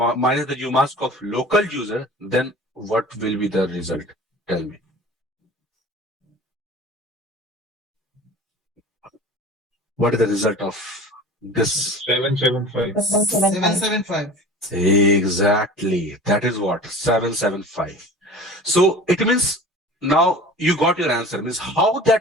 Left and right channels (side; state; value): both; normal; correlation 0.40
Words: the umask of local user, then what will be the result? Tell me. What is the result of this? 775. 775. Exactly. That is what? 775. So it means now you got your answer. Means how